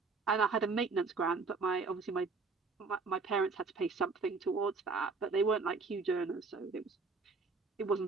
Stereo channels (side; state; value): left; quieter; 4.4 dB